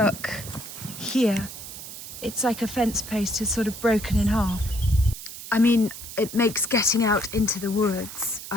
here. It's like a fence post is sort of broken in half. I mean, it makes getting out into the woods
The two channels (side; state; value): right; noise; hiss, 11 dB below the sound